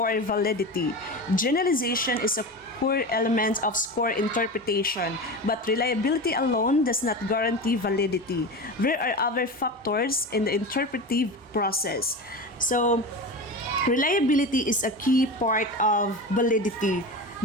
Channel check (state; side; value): normal; both; correlation 0.26